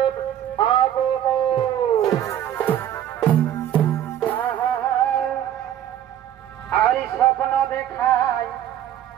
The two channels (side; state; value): left; quieter; 11.0 dB